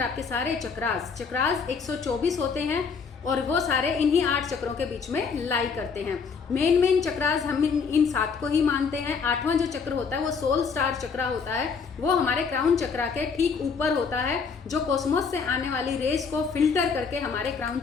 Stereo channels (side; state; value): right; quieter; 5.6 dB